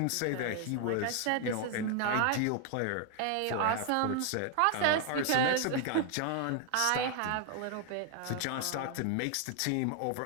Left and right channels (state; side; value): different; both; correlation 0.00